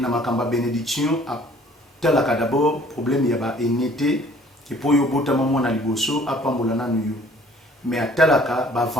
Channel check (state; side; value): normal; both; correlation 0.55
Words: makamba bénédiction a talaka d'abord problème ya ba enité que pour yo bota maman na liboso apambola na nuyo. Mais à talaka